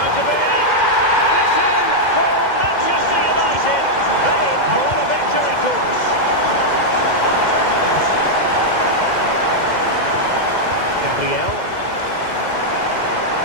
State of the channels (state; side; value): late; right; 2.1 ms